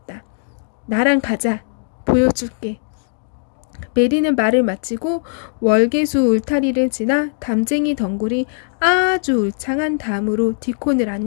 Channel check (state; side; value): silent; right; digital silence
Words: 나랑 가자. 보여줄게. 메리는 말을 마치고 월계수 울타리를 지나 담쟁이 덩굴이 아주 울창한 담으로 디콘을